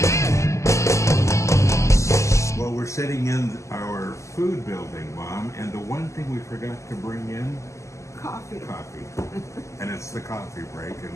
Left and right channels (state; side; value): late; right; 0.14 ms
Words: Well, we're sitting in our food building, Mom, and the one thing we forgot to bring in, Coffee. coffee. And it's the coffee break,